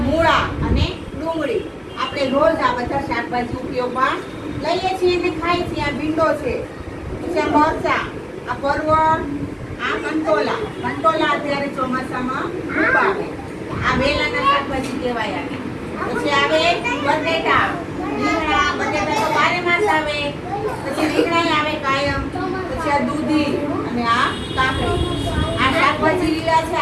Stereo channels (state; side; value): identical; both; correlation 1.00